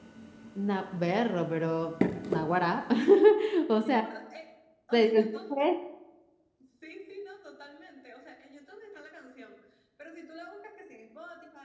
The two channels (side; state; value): both; identical; correlation 1.00